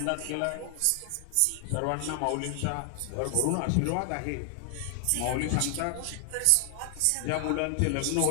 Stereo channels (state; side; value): different; both; correlation 0.00